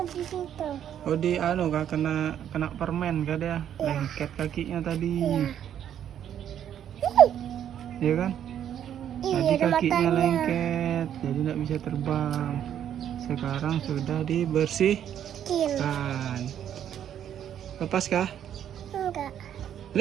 di situ. Oh, di kak kena permen kak dia. Iya. Lengket kakinya tadi. Iya. Iya kan? Iya, Tadi ada kakinya matanya. lengket, jadi nggak bisa terbang. Sekarang sudah dibersihkan. Lepas kah? Enggak.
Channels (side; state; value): left; quieter; 9.9 dB